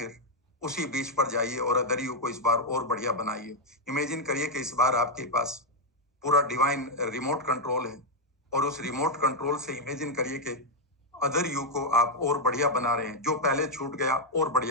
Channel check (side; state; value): both; normal; correlation 0.00